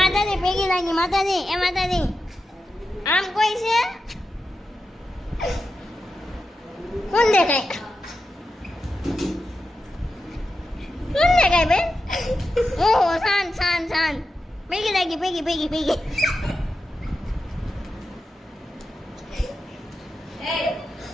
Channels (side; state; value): both; normal; correlation 0.90